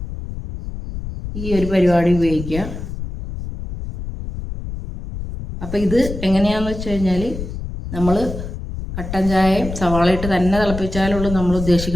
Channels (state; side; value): noise; left; rumble, 8 dB below the sound